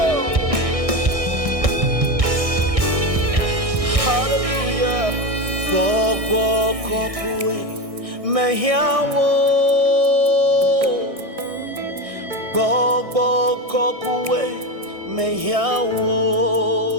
Gbogbo kokwe mehiawo, gbogbo kokwe mehiawo,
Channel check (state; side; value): late; left; 1.6 ms